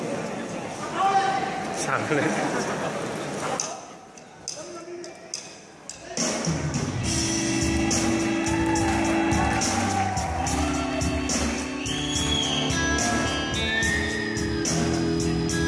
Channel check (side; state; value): both; identical; correlation 1.00